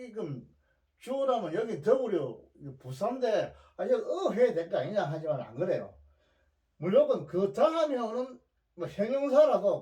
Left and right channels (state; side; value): identical; both; correlation 1.00